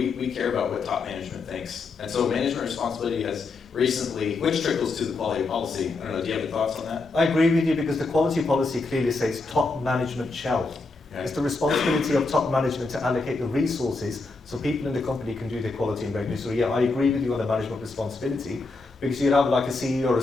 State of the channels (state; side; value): quieter; right; 3.7 dB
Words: care about what top management thinks, and so management responsibility has recently, which trickles to the quality policy. I don't know, do you have any thoughts on that? I agree with you because the quality policy clearly says top management shall. Okay. It's the responsibility of top management to allocate the resources so people in the company can do their quality and regulatory. So yeah, I agree with you on the management responsibility because you'd have like a CEO or a